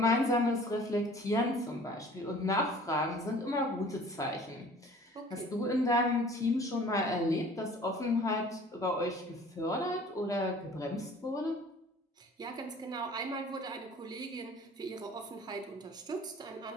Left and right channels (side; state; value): both; normal; correlation 0.49